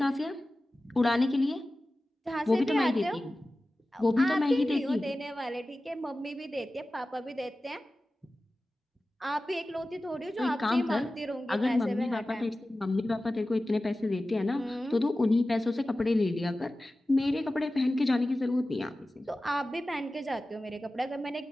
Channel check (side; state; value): both; normal; correlation 0.95